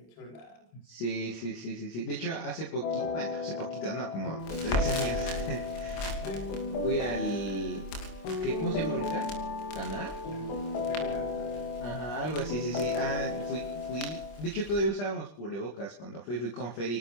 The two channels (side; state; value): right; late; 26 ms